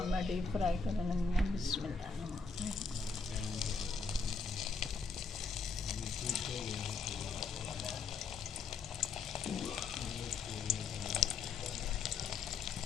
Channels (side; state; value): right; quieter; 4.8 dB